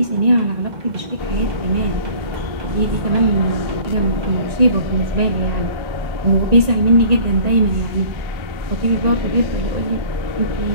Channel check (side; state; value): left; late; 1.9 ms